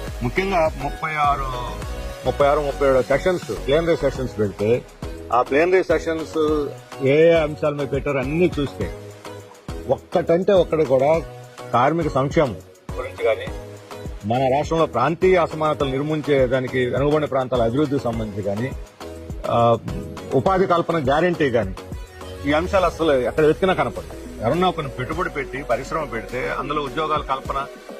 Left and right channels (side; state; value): both; identical; correlation 1.00